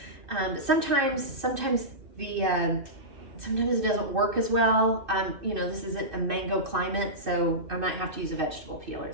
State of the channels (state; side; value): late; left; 2.6 ms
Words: Sometimes it doesn't work as well. You know, this isn't a mango climate, so I might have to use a vegetable peeler,